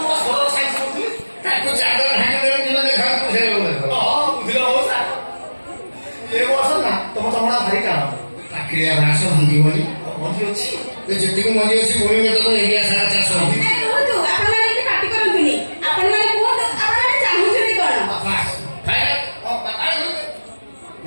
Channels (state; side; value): inverted; both; correlation -1.00